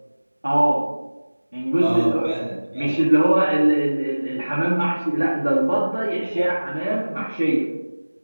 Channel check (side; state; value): both; inverted; correlation -1.00